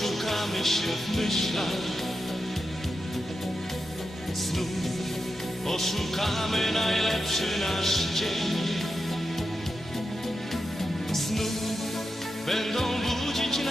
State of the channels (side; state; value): both; normal; correlation 0.89